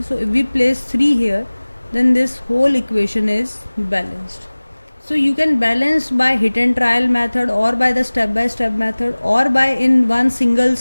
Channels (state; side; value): inverted; both; correlation -1.00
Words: So if we place 3 here, then this whole equation is balanced. So you can balance by hit and trial method, or by the step by step method, or by in one single